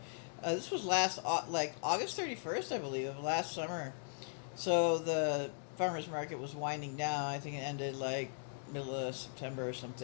This was like August 31st, I believe, of last summer. So the farmers market was winding down. I think it ended like middle of September or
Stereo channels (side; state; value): right; silent; digital silence